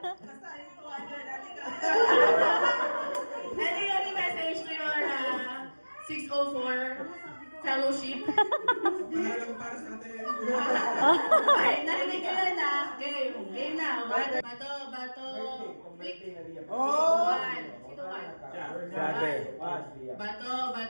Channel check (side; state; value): both; inverted; correlation -1.00